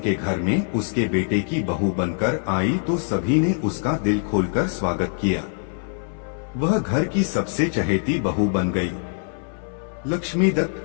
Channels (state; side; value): silent; right; 58 dB below the other